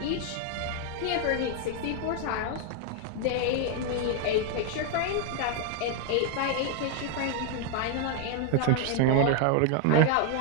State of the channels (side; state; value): both; different; correlation 0.01